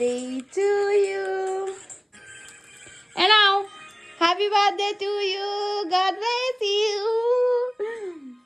to you. And now, happy birthday to you. God bless you.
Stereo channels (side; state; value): both; identical; correlation 1.00